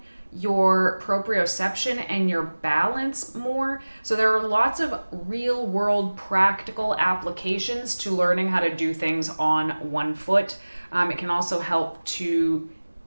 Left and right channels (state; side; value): inverted; both; correlation -1.00